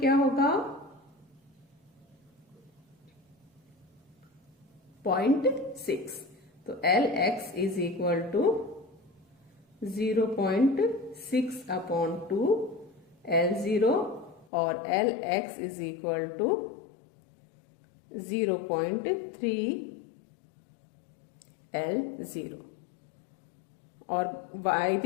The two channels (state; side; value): drops out; right; at 14.5 s